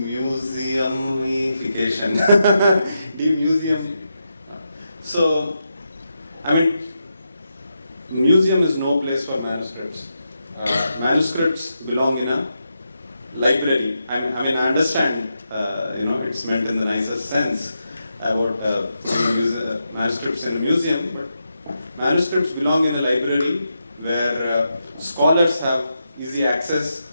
Demuseum. So, I mean, museum is no place for manuscripts. Manuscripts belong in a library. I understand, it's meant in the nicest sense about manuscripts in a museum, but manuscripts belong in a library where scholars have easy access,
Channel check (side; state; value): both; inverted; correlation -0.85